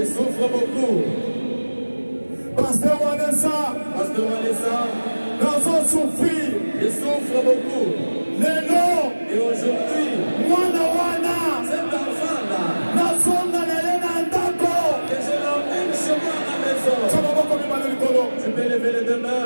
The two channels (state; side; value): inverted; both; correlation -1.00